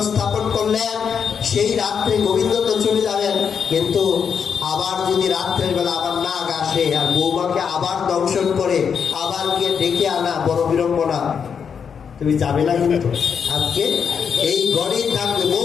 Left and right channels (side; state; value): right; quieter; 6.9 dB